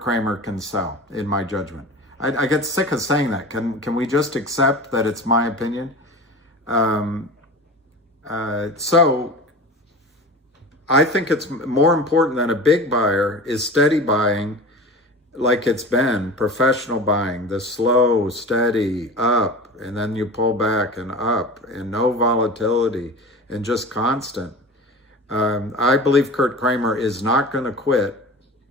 can sell, in my judgment. I get sick of saying that. Can we just accept that it's my opinion? So I think it's more important than a big buyer is steady buying, like it's been, professional buying, the slow, steady, up, and then you pull back and up, and no volatility, and just constant. I believe Kurt Kramer is not going to quit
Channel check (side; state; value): both; normal; correlation 0.34